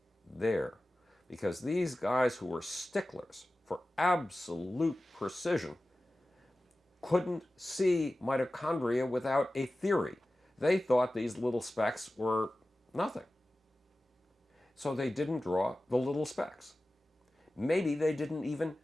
there because these guys who were sticklers for absolute precision couldn't see mitochondria without a theory. They thought these little specks were nothing. So they didn't draw the little specks. Maybe they didn't even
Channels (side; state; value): both; normal; correlation 0.95